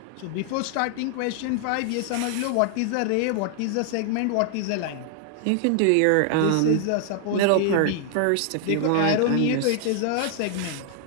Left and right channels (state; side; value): different; both; correlation 0.00